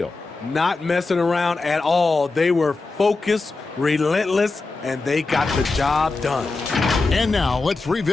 Not messing around at all. They were focused, relentless, and they got the job done. And now let's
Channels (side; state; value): right; quieter; 3.7 dB